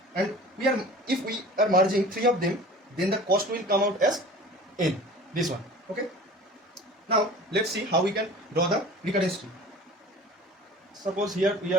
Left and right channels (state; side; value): normal; both; correlation 0.42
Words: And if we are merging three of them, then the cost will come out as n. This one. Okay. Now let's see how we can draw the recurrence tree. Suppose here we